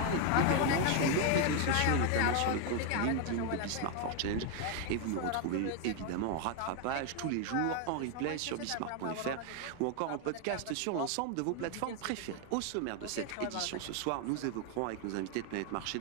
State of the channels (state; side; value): different; both; correlation 0.01